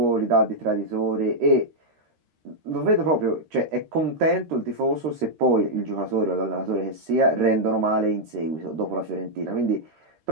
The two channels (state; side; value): late; left; 13 ms